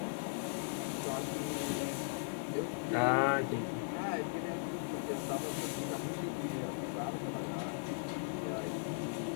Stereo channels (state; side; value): silent; right; digital silence